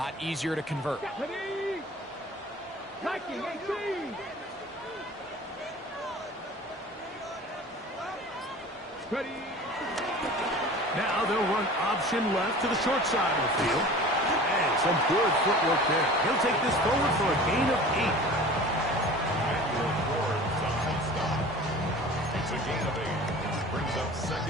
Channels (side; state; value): both; normal; correlation 0.41